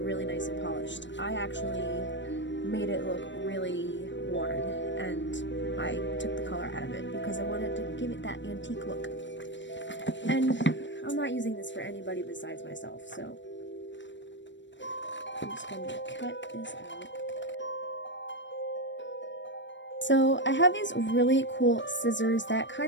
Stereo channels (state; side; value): late; right; 0.53 ms